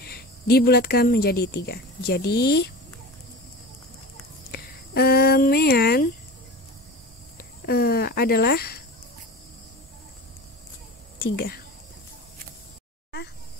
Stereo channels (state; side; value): normal; both; correlation 0.32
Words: Dibulatkan menjadi 3. Jadi, mean adalah 3.